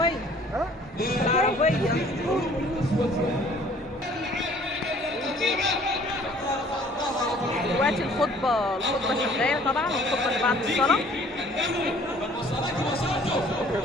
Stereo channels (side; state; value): both; normal; correlation 0.55